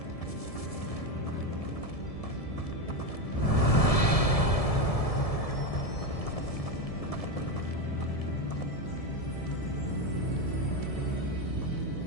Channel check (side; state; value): right; late; 1.7 ms